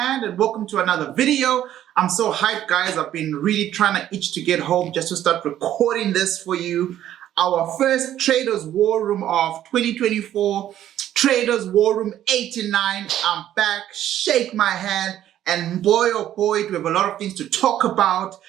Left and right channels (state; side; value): quieter; left; 11.9 dB